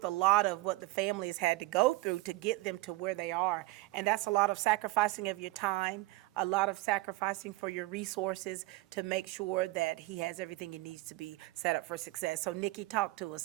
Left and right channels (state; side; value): quieter; left; 20.1 dB